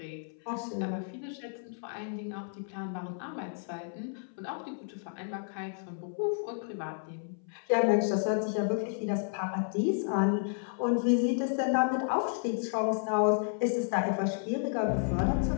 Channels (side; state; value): right; silent; 57 dB below the other